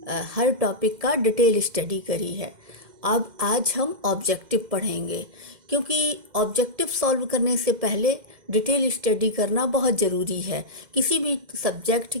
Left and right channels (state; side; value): late; left; 2.0 ms